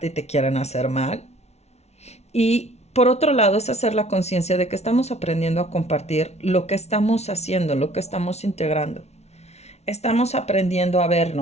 y te quieren hacer mal? Y por otro lado es hacer la conciencia de que estamos aprendiendo a compartir lo que estamos haciendo, lo que estamos integrando. Estamos aprendiendo a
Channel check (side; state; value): right; late; 0.31 ms